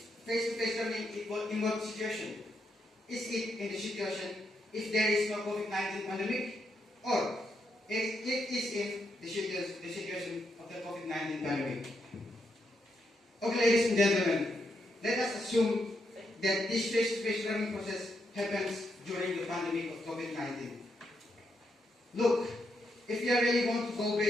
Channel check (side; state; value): both; normal; correlation 0.80